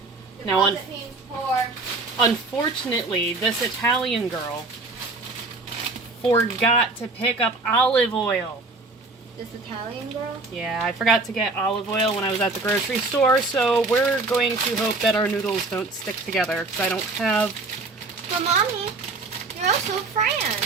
Now, unfortunately, this Italian girl forgot to pick up olive oil. This Italian girl? Yeah, I forgot to get olive oil when I was at the grocery store, so we're going to hope that our noodles don't stick together, because I don't have... But Mommy, you're also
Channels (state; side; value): quieter; left; 3.4 dB